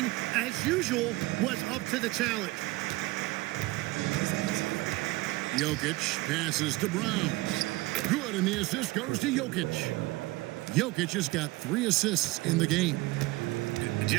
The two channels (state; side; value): quieter; left; 20.8 dB